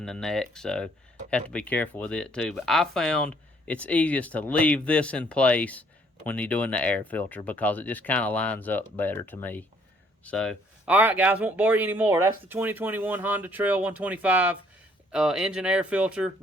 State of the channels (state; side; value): normal; both; correlation 0.63